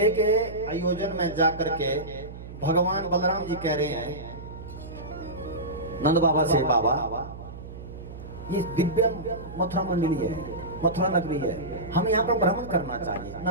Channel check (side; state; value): right; noise; hum, 13 dB below the sound